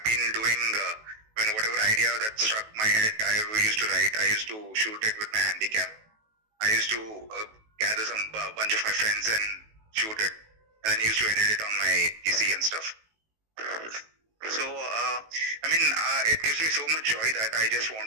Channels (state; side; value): late; left; 18 ms